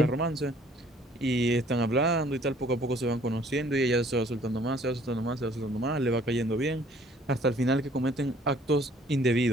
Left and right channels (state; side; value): normal; both; correlation 0.57